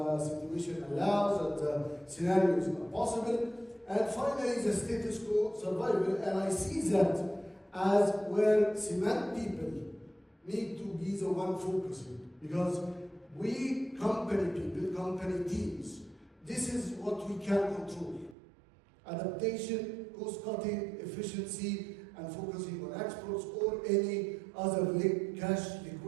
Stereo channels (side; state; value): left; drops out; at 18.4 s